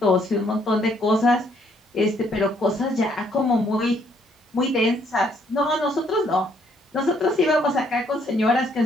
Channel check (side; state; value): both; normal; correlation 0.68